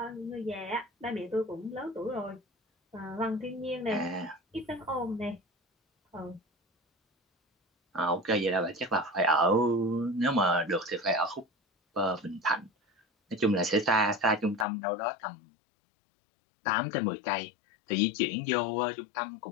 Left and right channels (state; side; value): drops out; right; at 14.7 s